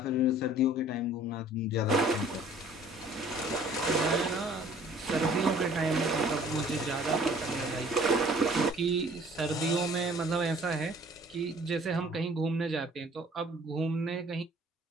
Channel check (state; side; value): normal; both; correlation 0.54